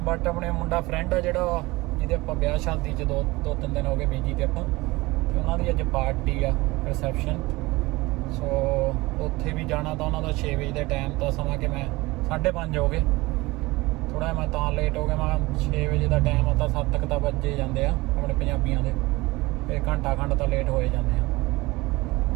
ਬਟ ਆਪਣੇ ਮੁੰਡਾ ਫਰੈਂਡ ਆ ਜਿਹੜਾ ਜਿਹਦੇ ਆਪਾਂ ਵਿਆਹ ਸ਼ਾਦੀ 'ਚ ਦੋ ਤਿੰਨ ਦਿਨ ਹੋ ਗਏ ਬੀਜੀ ਤੇ ਆਪਾਂ ਤੇ ਉਹਨਾਂ ਦੀ ਅੱਜ ਪਾਰਟੀ ਆ ਰਿਸੈਪਸ਼ਨ ਸੋ ਉੱਥੇ ਵੀ ਜਾਣਾ ਤਾਂ ਉਹਨਾਂ ਦਾ 6 ਵਜੇ ਦਾ ਟਾਈਮ ਤਾਂ ਸਮਾਂ ਕਿ ਮੈਂ 5:30 ਹੋ ਗਏ ਥੋੜਾ ਮੈਂ ਤਾਂ ਲੇਟ ਹੋ ਗਿਆ ਮੈਂ 6 ਵਜੇ ਦਾ ਟਾਈਮ ਆ ਤਾਂ 7 ਤੱਕ ਤਾਂ ਵੱਜੇ ਜਾਂਦੇ ਆ ਆਪਣੇ ਪੰਜਾਬੀਆਂ ਦੇ ਤੇ ਘੰਟਾ ਖੰਡ ਤਾਂ ਲੇਟ ਹੋਏ ਜਾਂਦੇ ਆ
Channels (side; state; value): left; quieter; 21.4 dB